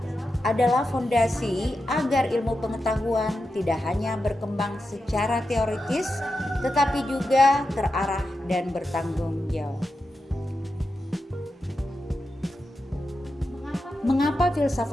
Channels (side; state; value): both; normal; correlation 0.89